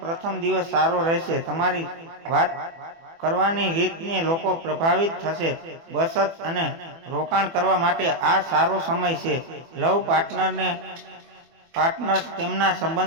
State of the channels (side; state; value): left; late; 24 ms